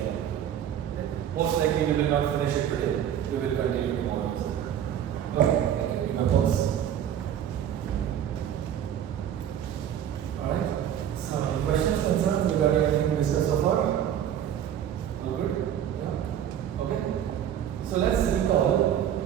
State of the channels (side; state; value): left; quieter; 10.0 dB